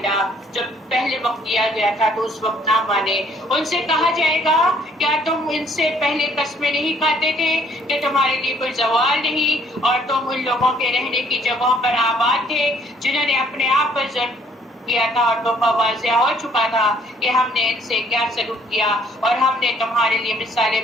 جب پہلے وقت دیا گیا تھا تو اس وقت نہ مانے. ان سے کہا جائے گا کیا تم ان سے پہلے قسمیں نہیں کھاتے تھے کہ تمہارے لیے کوئی زوال نہیں اور تم ان لوگوں کے رہنے کی جگہوں پر آباد تھے جنہوں نے اپنے آپ پر ظلم کیا تھا اور تو واضح ہو چکا تھا کہ ہم نے ان سے کیا سلوک کیا اور ہم نے تمہارے لیے مثالیں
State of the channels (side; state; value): both; normal; correlation 0.62